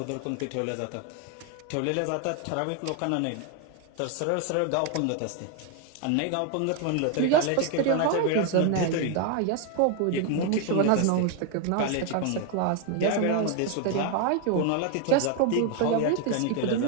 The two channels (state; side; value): different; both; correlation 0.01